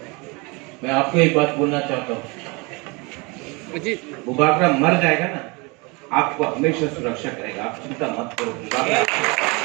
मैं आपको एक बात बोलना चाहता हूँ, वो बाकरा मर जाएगा ना, आपको हमेशा सुरक्षा करेगा, आप चिंता मत करो।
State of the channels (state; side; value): quieter; left; 27.9 dB